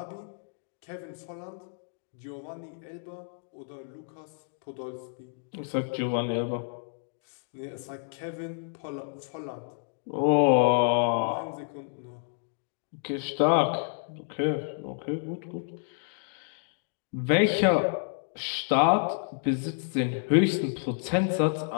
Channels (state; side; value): silent; right; digital silence